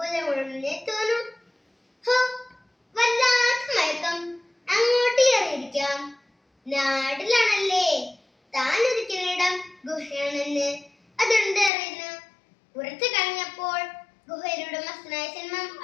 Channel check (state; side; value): drops out; right; at 11.7 s